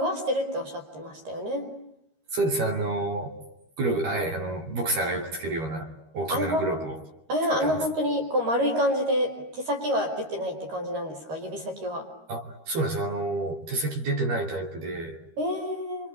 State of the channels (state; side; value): late; left; 13 ms